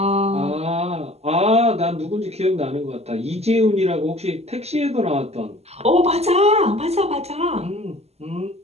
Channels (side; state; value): left; late; 0.30 ms